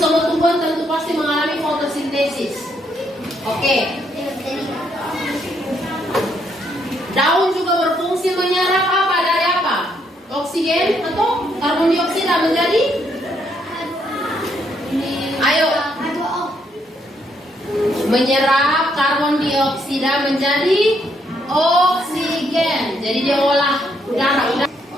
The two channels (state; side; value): normal; both; correlation 0.73